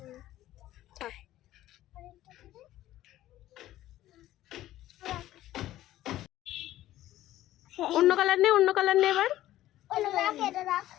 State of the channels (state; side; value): quieter; right; 14.3 dB